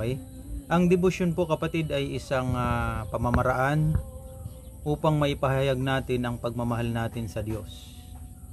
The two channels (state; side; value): identical; both; correlation 1.00